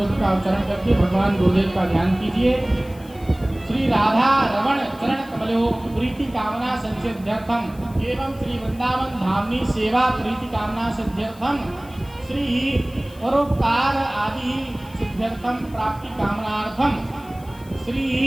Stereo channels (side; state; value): left; noise; hiss, 24 dB below the sound